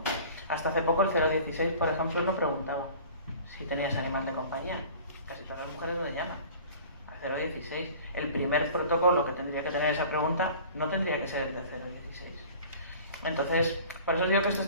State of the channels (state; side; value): inverted; both; correlation -0.44